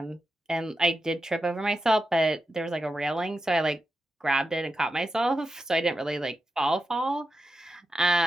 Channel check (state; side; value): normal; both; correlation 0.89